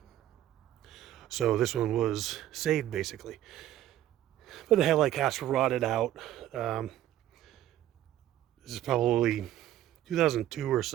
So this one was saved, basically. But the headlight caps were rotted out. This is probably 2002 or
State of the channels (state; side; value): quieter; left; 12.9 dB